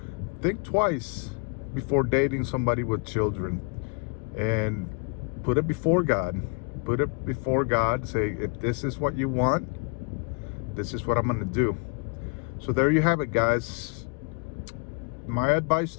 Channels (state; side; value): quieter; right; 34.6 dB